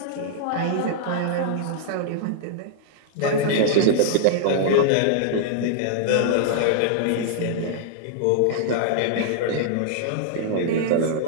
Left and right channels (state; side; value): different; both; correlation -0.01